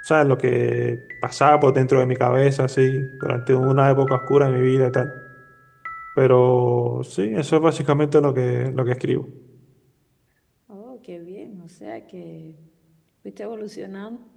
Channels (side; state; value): both; identical; correlation 1.00